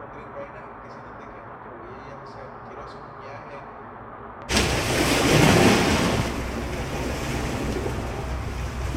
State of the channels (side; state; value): both; identical; correlation 1.00